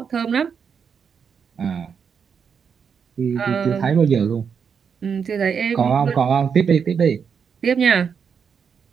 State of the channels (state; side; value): quieter; left; 6.7 dB